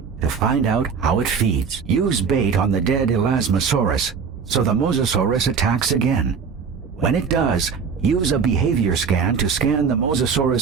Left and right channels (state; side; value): quieter; left; 6.0 dB